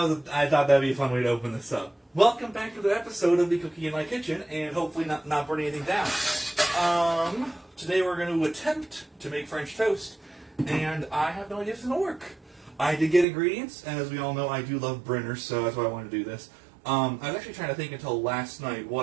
thought that would be a fun way to open this up. Welcome back to the episode of the Cooking in My Kitchen, and hopefully not burn anything down. Today we're going to attempt to make French toast, and I have no idea if it's going to work. I did get ingredients, and as we all know, I do love Brinner, so that's why I wanted to do this. I was actually trying to think until last night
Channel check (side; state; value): left; drops out; at 13.2 s